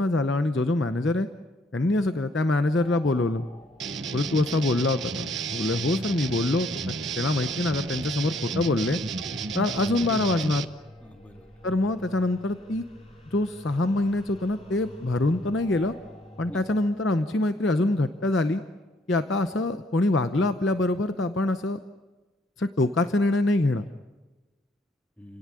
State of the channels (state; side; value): normal; both; correlation 0.66